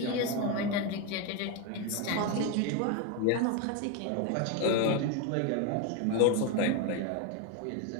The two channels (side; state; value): both; different; correlation 0.02